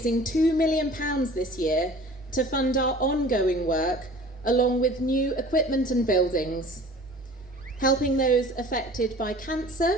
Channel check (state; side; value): normal; both; correlation 0.45